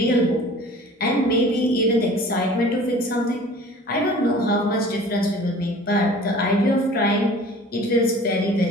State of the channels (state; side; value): normal; both; correlation 0.45